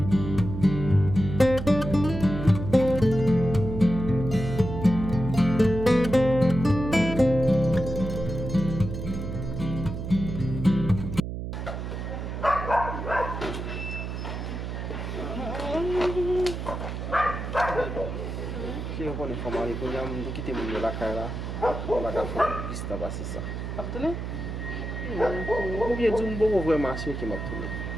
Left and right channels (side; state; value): right; noise; hum, 6 dB below the sound